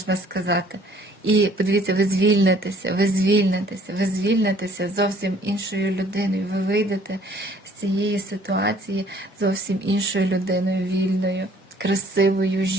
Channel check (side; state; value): both; normal; correlation 0.58